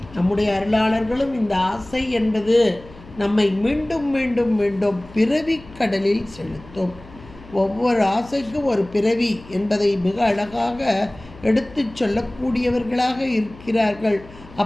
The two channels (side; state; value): left; noise; hum, 20 dB below the sound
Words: நம்முடைய அருளாளர்களும் இந்த ஆசை என்பது நம்மை மீண்டும் மீண்டும் மீண்டும் பிறவி கடலில் செலுத்தும். ஒவ்வொரு ஆசைக்கும் ஒரு பிறவி என்பதை மிக அழகாக எடுத்து சொல்லக்கூடியவர்களாக இருக்கிறார்கள்.